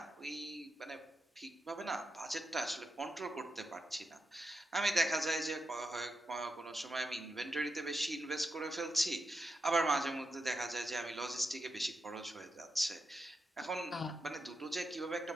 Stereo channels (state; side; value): normal; both; correlation 0.87